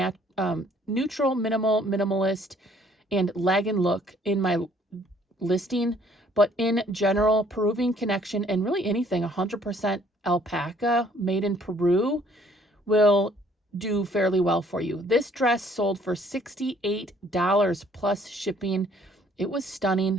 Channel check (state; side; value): normal; both; correlation 0.61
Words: minimal, minimalist, and leg and look in my listing. But in general, Peruvian Connection, and really anything 100% alpaca made in Peru will do fairly well for you. This dress sold for $68 plus shipping. It was